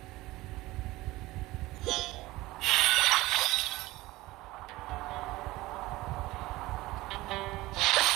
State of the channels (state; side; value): quieter; left; 19.0 dB